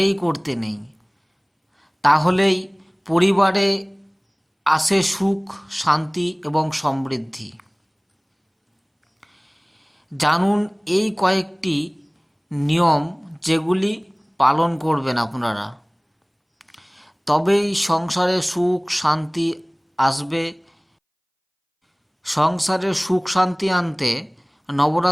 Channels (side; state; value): both; identical; correlation 1.00